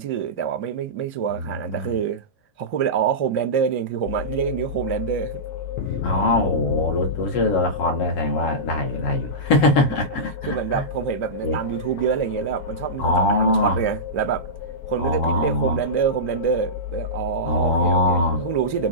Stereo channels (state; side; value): late; right; 7.5 ms